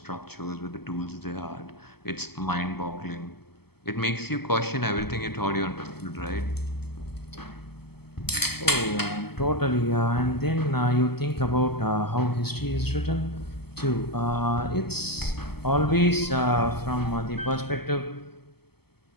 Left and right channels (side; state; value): right; late; 0.96 ms